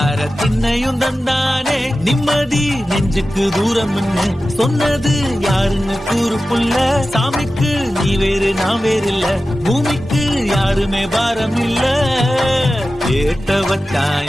திண்ணையும் தந்தானே நிம்மதி நெஞ்சுக்கு தூரம் சொன்னது யாருன்னு கூறு புள்ள சாமிக்கு நீ வேறு நான் வேறு இல்ல பூமிக்கு யாருமே பாரம் இல்ல ஏட்ட வச்சான்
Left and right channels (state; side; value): normal; both; correlation 0.94